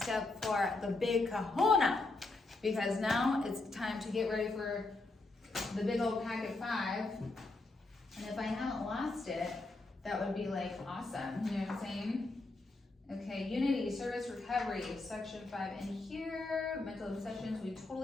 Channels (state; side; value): quieter; right; 3.2 dB